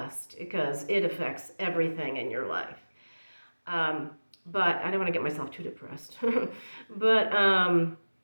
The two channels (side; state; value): both; inverted; correlation -1.00